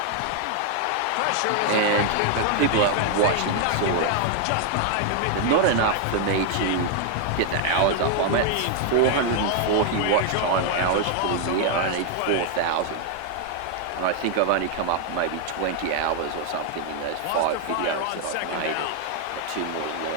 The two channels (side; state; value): both; different; correlation 0.00